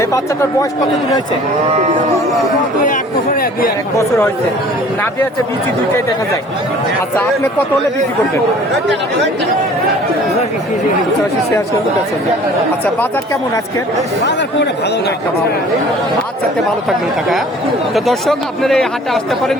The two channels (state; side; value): normal; both; correlation 0.49